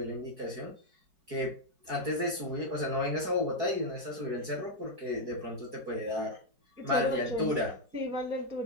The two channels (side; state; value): left; late; 4.7 ms